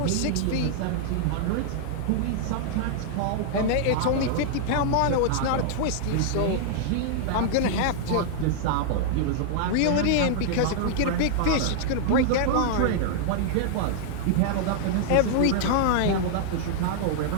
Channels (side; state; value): both; different; correlation -0.01